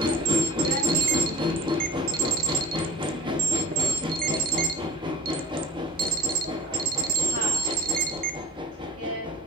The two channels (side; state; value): both; normal; correlation 0.49